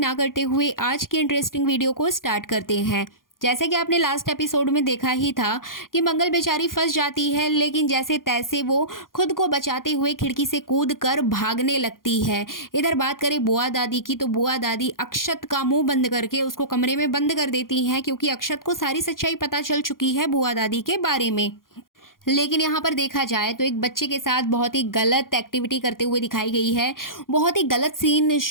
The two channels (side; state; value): right; late; 0.91 ms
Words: करते हुए आज की इंटरेस्टिंग वीडियो को स्टार्ट करते हैं। जैसे कि आपने लास्ट एपिसोड में देखा ही था कि मंगल बेचारी फंस जाती है, लेकिन जैसे तैसे वो खुद को बचाते हुए खिड़की से कूद कर भागने लगती है। इधर बात करें बुआ दादी की, तो बुआ दादी अक्षत का मुंह बंद करके उसको कमरे में बंद कर देती हैं, क्योंकि अक्षत को सारी सच्चाई पता चल चुकी है बुआ दादी के बारे में। लेकिन यहाँ पर देखा जाए तो एक बच्चे के साथ बहुत ही गलत एक्टिविटी करते हुए दिखाई गई है। बहुत ही गलत सीन